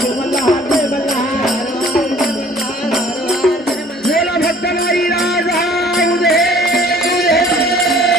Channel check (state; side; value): normal; both; correlation 0.54